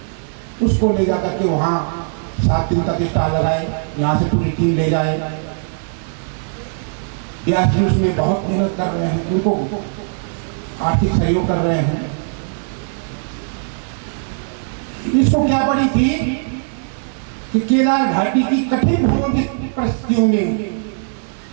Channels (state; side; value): silent; left; digital silence